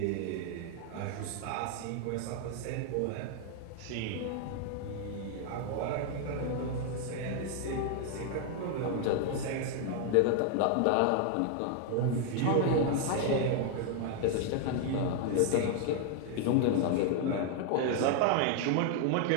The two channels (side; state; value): both; different; correlation 0.00